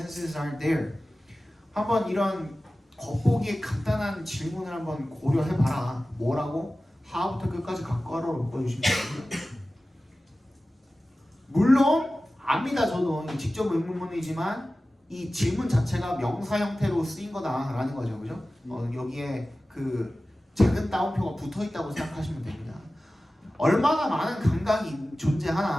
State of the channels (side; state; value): both; normal; correlation 0.96